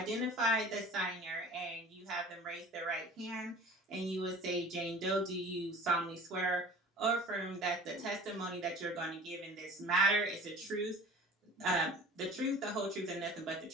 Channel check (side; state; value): both; normal; correlation 0.44